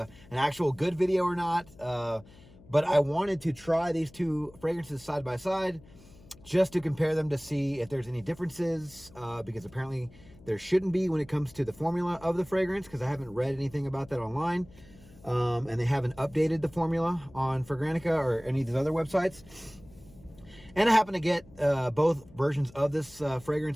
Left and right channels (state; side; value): noise; left; hum, 23 dB below the sound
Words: actual good video or not. But I wanted to try these two fragrances side by side just to compare them to see if there's any differences, because apparently there shouldn't be when it comes to the formula of the fragrance, because I haven't read anything about that online. And they haven't updated the formula on Fragrantica or any of these other websites. And I happen to get both versions of this